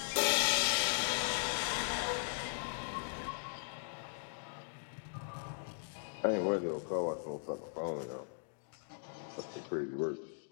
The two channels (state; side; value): silent; right; digital silence